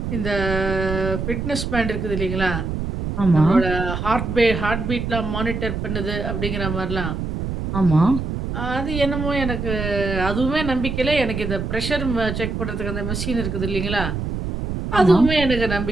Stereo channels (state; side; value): noise; right; rumble, 4 dB below the sound